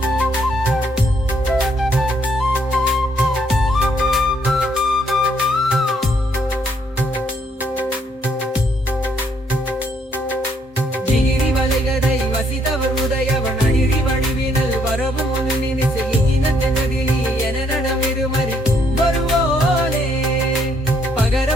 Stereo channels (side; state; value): both; normal; correlation 0.70